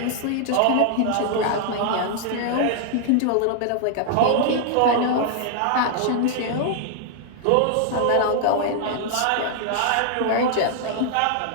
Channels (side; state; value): both; different; correlation 0.00